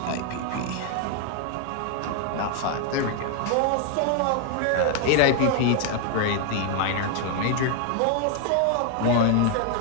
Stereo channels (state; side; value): different; both; correlation 0.00